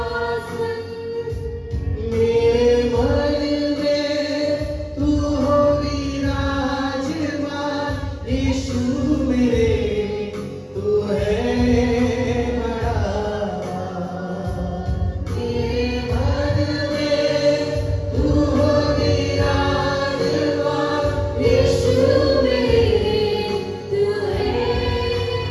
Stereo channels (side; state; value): both; identical; correlation 1.00